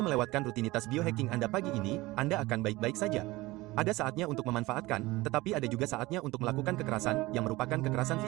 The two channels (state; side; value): quieter; left; 20.1 dB